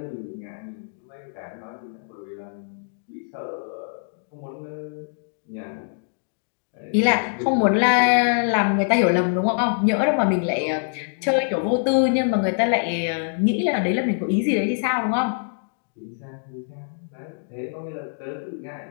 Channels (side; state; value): right; silent; digital silence